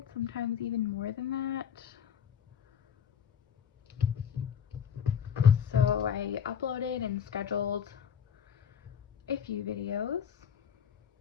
sometimes even more than that. So I uploaded and scheduled a few videos.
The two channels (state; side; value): quieter; right; 8.0 dB